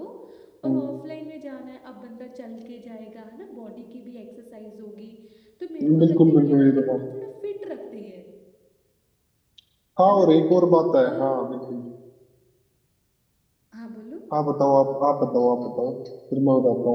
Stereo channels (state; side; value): identical; both; correlation 1.00